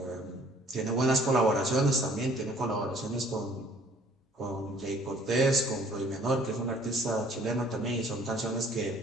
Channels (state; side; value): normal; both; correlation 0.57